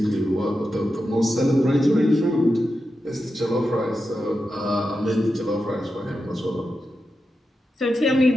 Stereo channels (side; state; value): both; normal; correlation 0.89